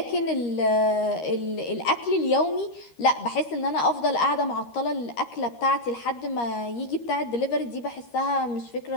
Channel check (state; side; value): late; right; 13 ms